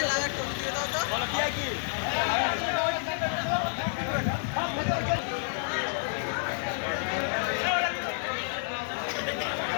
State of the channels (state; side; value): silent; right; digital silence